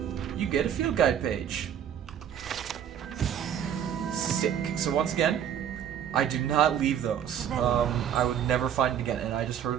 you get a field guide page. Sick. So once again, I do not leave those. I would never find it again, and I just heard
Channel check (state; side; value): quieter; left; 9.3 dB